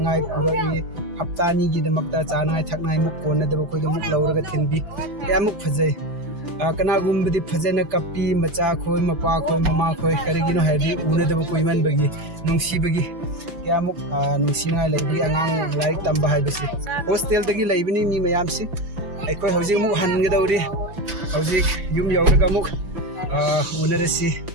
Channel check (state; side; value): late; left; 5.9 ms